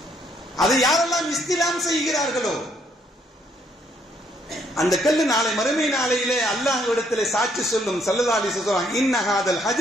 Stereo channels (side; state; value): both; normal; correlation 0.69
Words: அதை யாரெல்லாம் இஸ்திலாம் செய்கிறார்களோ அந்த கல்லு நாளை மறுமை நாளையிலே அல்லாஹ்விடத்திலே சாட்சி சொல்லும். ஸல்லல்லாஹு அலைஹி வஸல்லம் இன்ன ஹாதல்